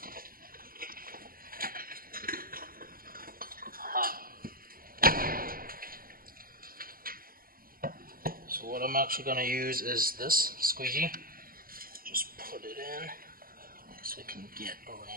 so what I'm actually going to use is this squeegee. Just put it in so we can get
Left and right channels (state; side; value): late; left; 0.42 ms